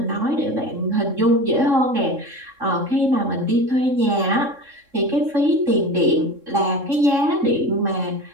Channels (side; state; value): left; late; 3.6 ms